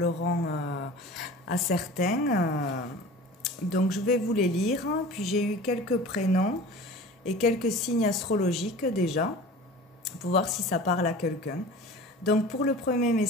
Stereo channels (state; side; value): normal; both; correlation 0.39